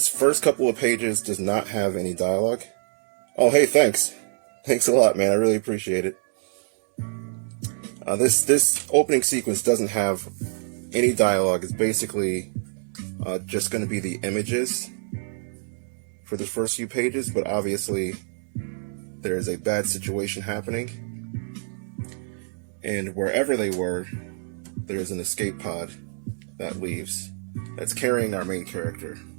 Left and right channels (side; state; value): left; silent; 61 dB below the other